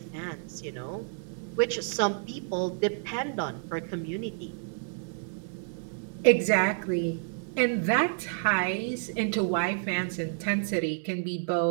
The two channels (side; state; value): left; silent; digital silence